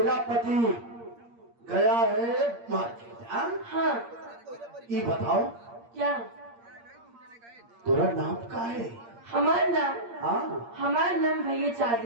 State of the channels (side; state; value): left; late; 8.6 ms